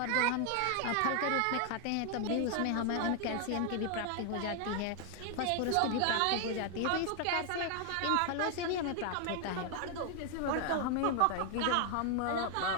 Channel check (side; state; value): both; different; correlation 0.00